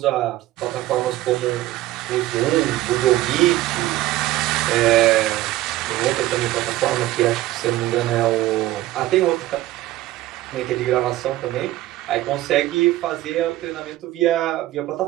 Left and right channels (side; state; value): left; quieter; 15.9 dB